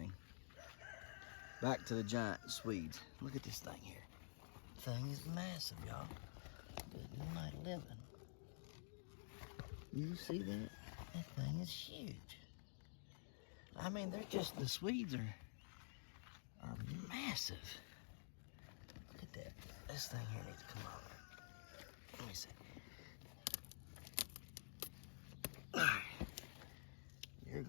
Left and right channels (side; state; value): right; silent; digital silence